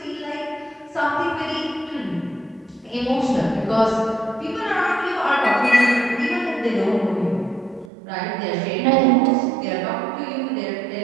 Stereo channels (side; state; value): left; drops out; at 7.9 s